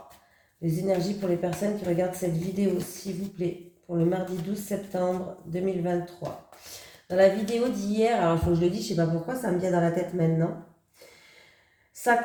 Les énergies pour les personnes qui regardent cette vidéo, s'il vous plaît, pour le mardi 12 septembre 2023. Dans la vidéo d'hier, alors il faut que je le dise, je ne sais pas pourquoi, ça me vient dans la tête maintenant. Ça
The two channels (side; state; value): both; identical; correlation 1.00